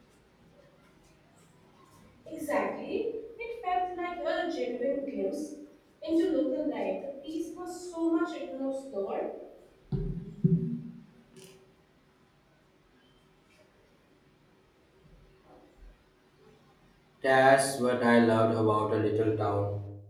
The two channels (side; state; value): both; identical; correlation 1.00